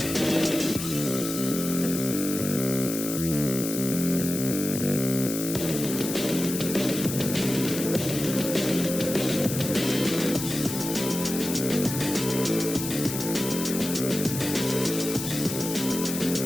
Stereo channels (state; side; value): noise; left; hiss, 6 dB below the sound